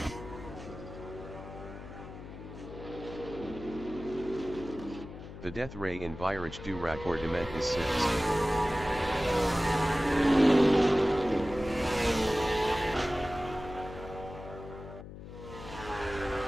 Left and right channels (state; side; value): noise; left; hum, 13 dB below the sound